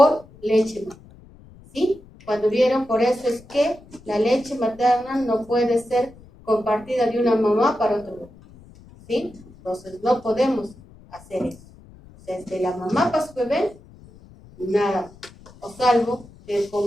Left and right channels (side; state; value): left; noise; rumble, 23 dB below the sound